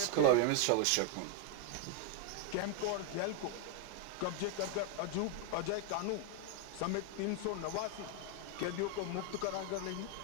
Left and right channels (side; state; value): both; different; correlation 0.01